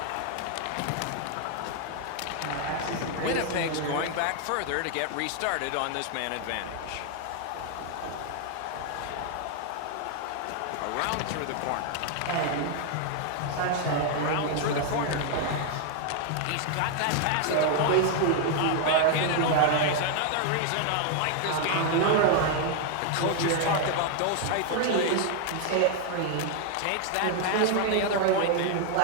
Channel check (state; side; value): different; both; correlation 0.00